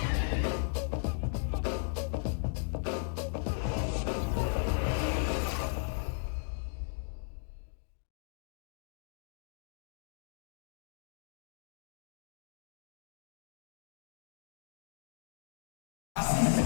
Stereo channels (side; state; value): right; silent; digital silence